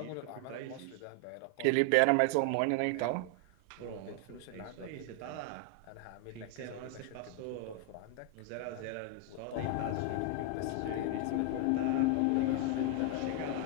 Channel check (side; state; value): both; different; correlation 0.00